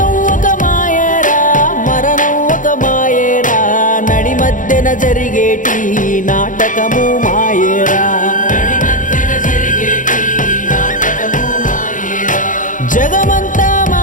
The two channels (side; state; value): right; late; 0.38 ms